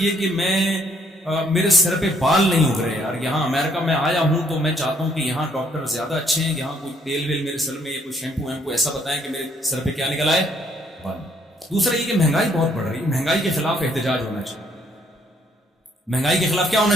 کہ میرے سر پہ بال نہیں اگ رہے یار. یہاں امریکہ میں آیا ہوں تو میں چاہتا ہوں کہ یہاں ڈاکٹر زیادہ اچھے ہیں, یہاں کوئی تیل ویل میرے سر میں یا کوئی شیمپو ویمپو ایسا بتائیں کہ میرے سر پہ کیا نکل آئے, بال. دوسرا یہ کہ مہنگائی بہت بڑھ رہی ہے, مہنگائی کے خلاف احتجاج ہونا چاہیے. مہنگائی کے خلاف کیا ہونا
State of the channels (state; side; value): normal; both; correlation 0.67